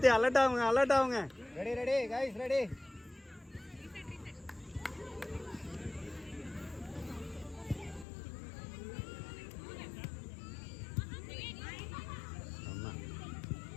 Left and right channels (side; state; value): right; drops out; at 8.1 s